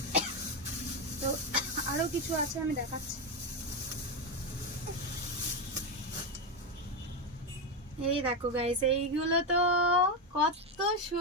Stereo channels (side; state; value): both; normal; correlation 0.09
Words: তো আরো কিছু আছে, আমি দেখাচ্ছি। এই দেখো গাইস, এইগুলো তো কত